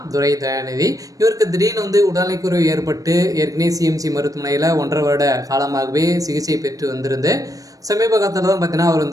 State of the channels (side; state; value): left; late; 0.17 ms